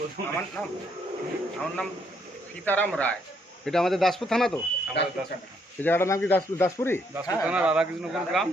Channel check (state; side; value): normal; both; correlation 0.71